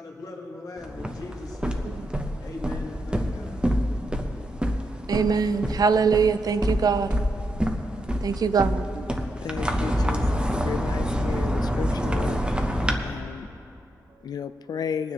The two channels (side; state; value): both; normal; correlation 0.83